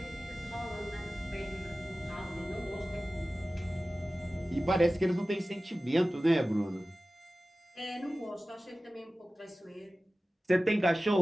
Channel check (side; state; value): both; normal; correlation 0.96